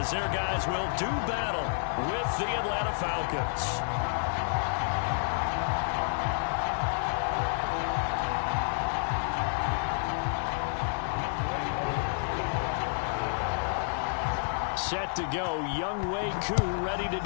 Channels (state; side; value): silent; right; 58 dB below the other